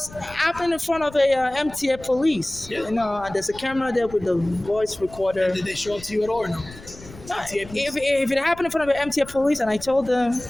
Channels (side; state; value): left; noise; rumble, 18 dB below the sound